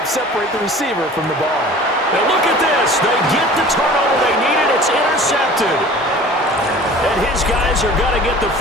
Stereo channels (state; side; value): normal; both; correlation 0.44